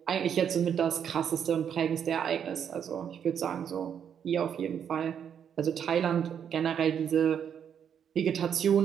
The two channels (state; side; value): quieter; left; 8.3 dB